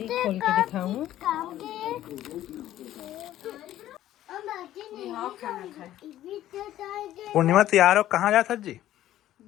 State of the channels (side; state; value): right; quieter; 13.1 dB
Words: खोल के दिखाऊं। खाना खाए पूर्णिमा तैयार हो कहाँ जाता जी?